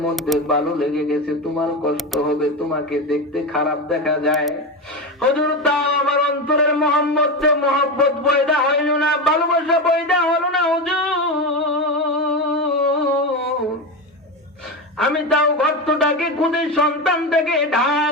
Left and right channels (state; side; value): normal; both; correlation 0.18